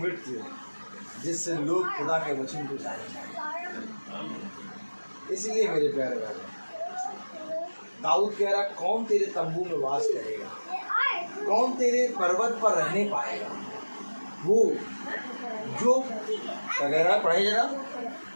जिससे लोग खुदा के वचन को जाने। इसलिए मेरे प्यारे भाई, दाऊद कह रहा कौन तेरे तंबू में वास करेगा, कौन तेरे पर्वत पर रहने पाएगा? वो जो वगैरह पढ़े जरा।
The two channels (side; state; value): both; inverted; correlation -1.00